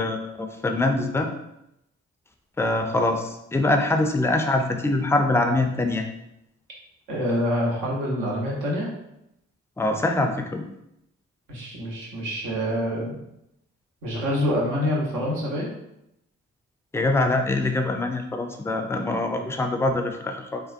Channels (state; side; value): normal; both; correlation 0.57